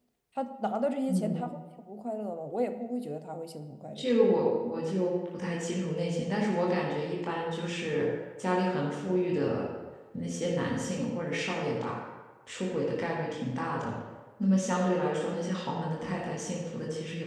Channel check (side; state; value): both; identical; correlation 1.00